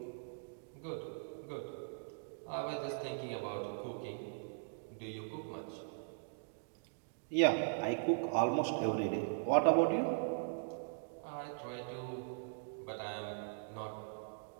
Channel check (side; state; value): left; silent; digital silence